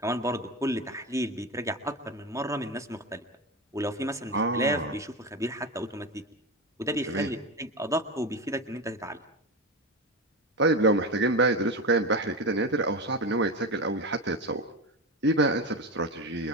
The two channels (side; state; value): both; normal; correlation 0.20